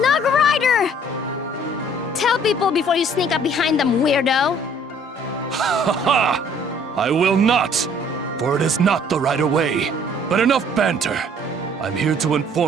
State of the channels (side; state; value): both; normal; correlation 0.57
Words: Rider! Tell people before you sneak up behind them, weirdo! Ha ha! I will not! For it is not the right way. But enough banter. I'm here to